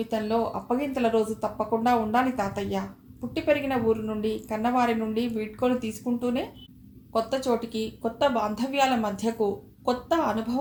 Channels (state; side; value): identical; both; correlation 1.00